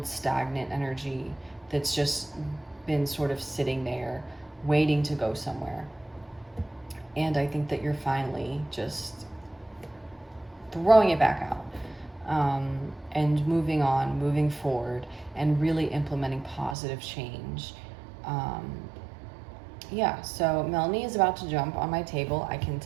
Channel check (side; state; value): left; drops out; at 16.8 s